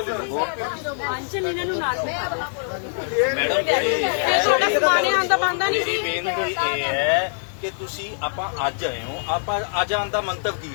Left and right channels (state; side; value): silent; right; 63 dB below the other